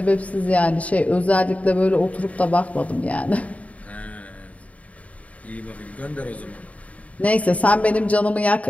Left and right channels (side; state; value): right; late; 0.068 ms